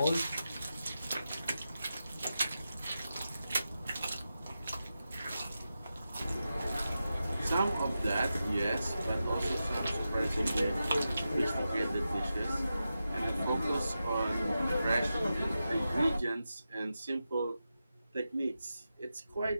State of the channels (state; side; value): inverted; both; correlation -0.90